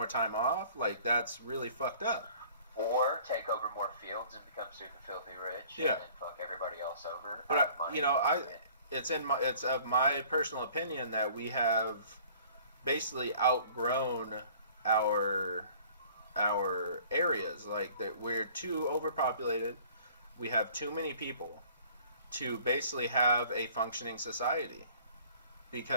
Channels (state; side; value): inverted; both; correlation -0.52